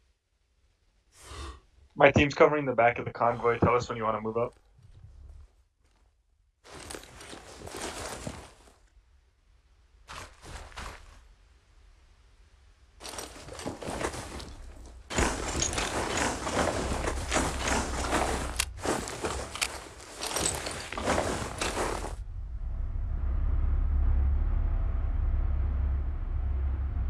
My team's covering the back of the convoy. Tell us when you want to move up.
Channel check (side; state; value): both; identical; correlation 1.00